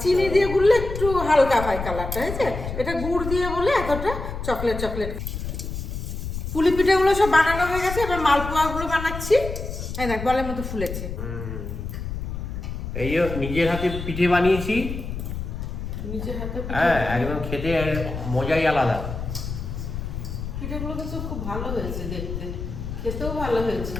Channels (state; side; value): noise; left; rumble, 6 dB below the sound